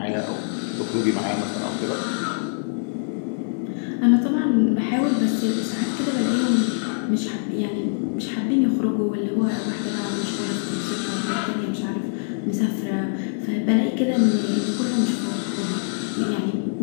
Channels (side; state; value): right; silent; digital silence